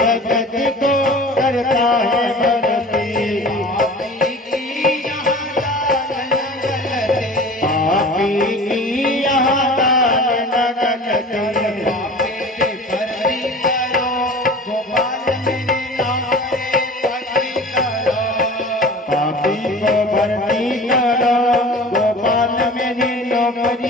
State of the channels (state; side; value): normal; both; correlation 0.40